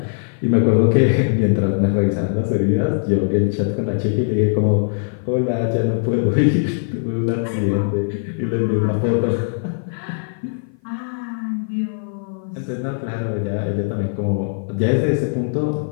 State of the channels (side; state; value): right; silent; 55 dB below the other